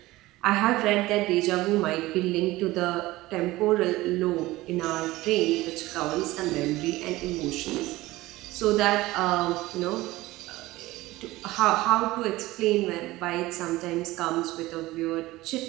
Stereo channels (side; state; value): left; quieter; 18.4 dB